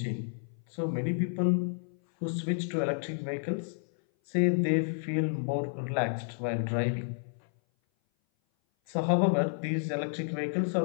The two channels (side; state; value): right; silent; 57 dB below the other